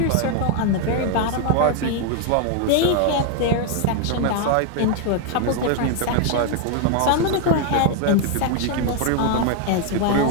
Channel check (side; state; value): both; different; correlation 0.01